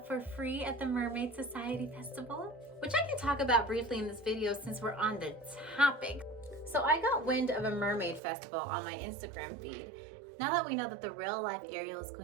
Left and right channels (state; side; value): drops out; left; at 8.2 s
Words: for free at the Mermaid Society Festival, which I can talk about briefly in this video since we're on the topic. So I got wind of a mermaid festival on my Instagram feed. Now that we know that the real life Ariel is